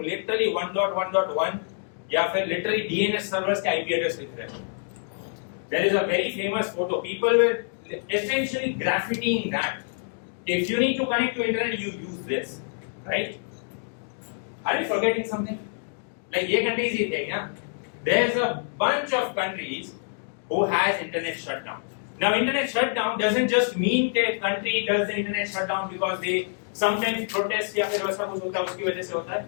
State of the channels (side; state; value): right; silent; digital silence